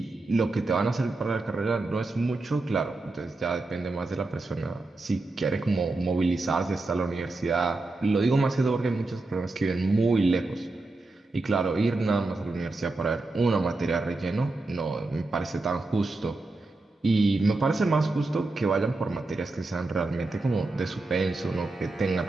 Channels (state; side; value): quieter; left; 3.2 dB